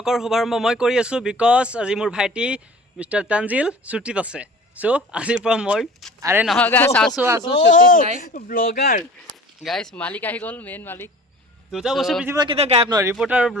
শুভাৰম্ভ মই কৰি আছো because আজি মোৰ ভাইটি মিস্টাৰ তানজিল ছুটিত আছে। সো আজিৰ পৰা মই আৰে নহয় গাইস আছো ছুটিত নাই ব্লগাৰ গাইস মালিক আহি গল মেইন মালিক দুটা বছৰ পৃথিৱীৰ কেতিয়া গায়ব নহয় ৰিপৰ্টাৰ আৰু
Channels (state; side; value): normal; both; correlation 0.43